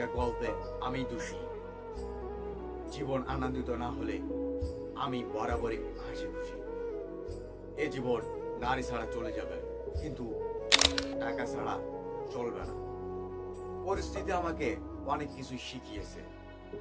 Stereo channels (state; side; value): identical; both; correlation 1.00